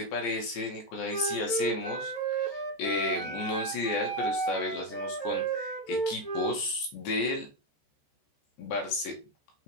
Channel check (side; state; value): right; late; 14 ms